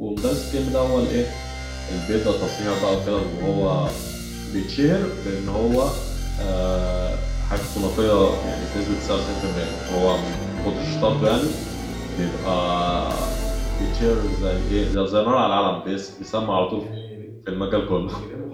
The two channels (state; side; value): identical; both; correlation 1.00